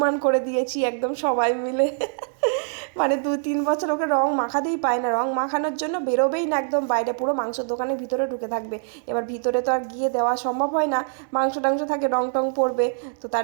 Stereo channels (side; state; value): left; silent; 58 dB below the other